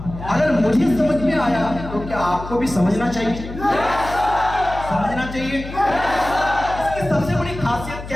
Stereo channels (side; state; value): left; noise; hum, 11 dB below the sound